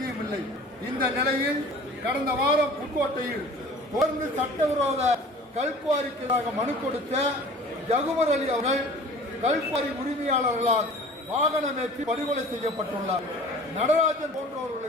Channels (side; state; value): both; normal; correlation 0.45